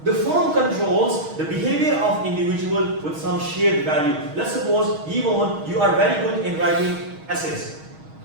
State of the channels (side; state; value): left; late; 6.4 ms